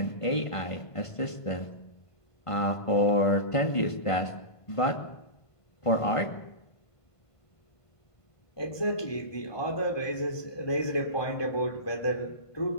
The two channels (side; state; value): right; late; 1.5 ms